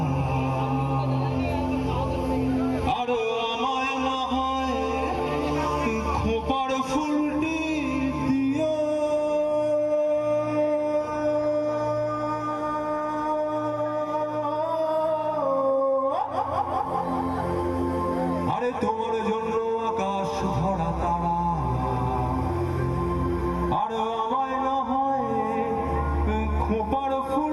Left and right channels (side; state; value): both; identical; correlation 1.00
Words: আর আমায় না হয় খোপার ফুলটি দিও। আরে তোমার জন্য আকাশ ভরা তারা আর আমায় না হয় খোপার